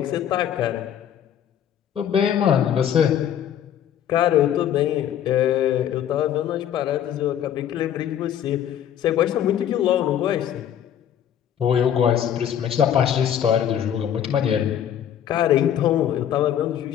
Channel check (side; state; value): right; quieter; 10.0 dB